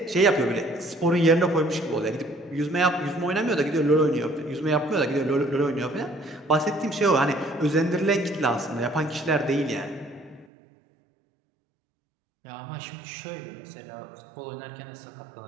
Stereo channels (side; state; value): left; drops out; at 10.5 s